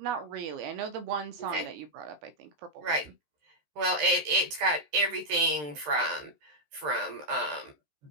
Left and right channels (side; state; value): left; late; 13 ms